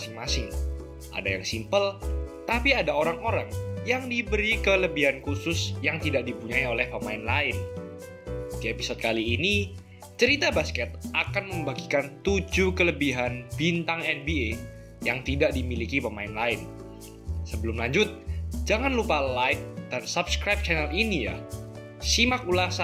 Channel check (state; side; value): identical; both; correlation 1.00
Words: Ada yang simple, tapi ada orang-orang yang diberi kelebihan khusus yang tidak dipunyai oleh pemain lain. Di episode kali ini, Cerita Basket akan membagikan 7 kelebihan bintang NBA yang tidak dimiliki pemain lain. Sebelum lanjut, jangan lupa like dan subscribe channel ini ya. Simak